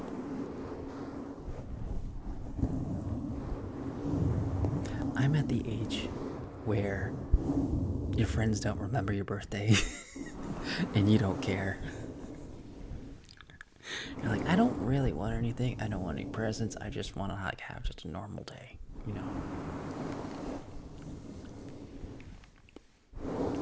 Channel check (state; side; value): identical; both; correlation 1.00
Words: I'm at the age where your friends don't remember your birthday and you don't care. You're like, I don't really want anything. I don't want any presents. I just want to like have just a normal day, you know.